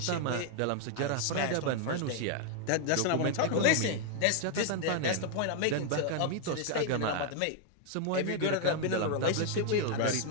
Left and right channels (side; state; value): both; different; correlation 0.00